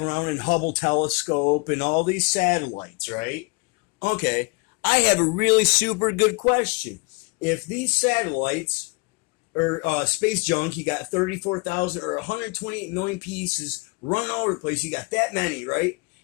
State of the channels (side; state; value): right; quieter; 27.1 dB